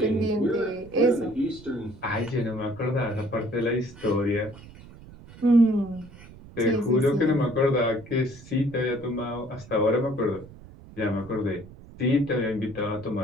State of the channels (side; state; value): right; noise; rumble, 19 dB below the sound